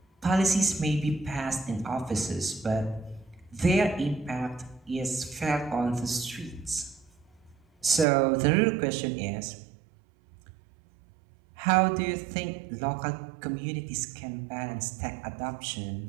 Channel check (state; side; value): drops out; left; at 8.1 s